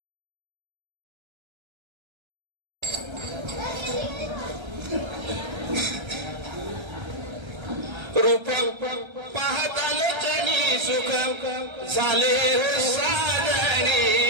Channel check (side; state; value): left; late; 1.3 ms